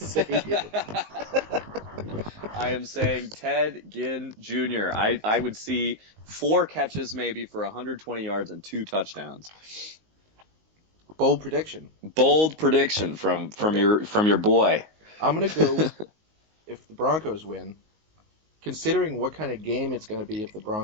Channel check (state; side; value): late; left; 19 ms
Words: it. I am saying Ted Ginn Jr. I would see 4 catches maybe for 120 yards and 2 touchdowns. Bold prediction. Bold prediction from your boy. I'm going to go if the Broncos win. Considering what kind of game it's going to be if the